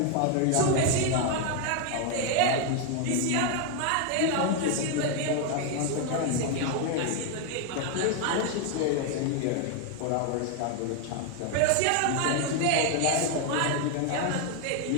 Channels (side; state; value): both; different; correlation 0.01